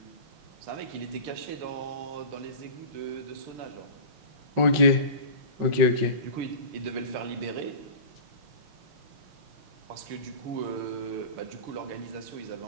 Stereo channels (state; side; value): late; left; 5.4 ms